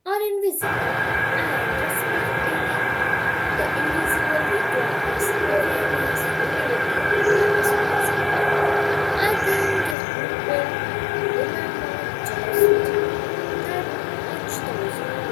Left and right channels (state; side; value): drops out; right; at 10.0 s